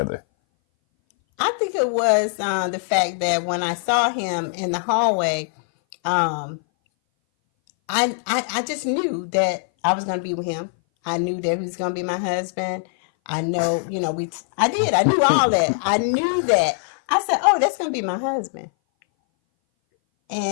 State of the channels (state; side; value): silent; right; 60 dB below the other